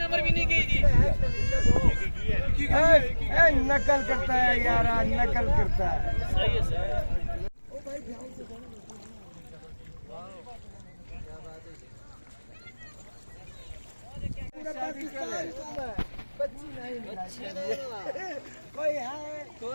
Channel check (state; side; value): inverted; both; correlation -1.00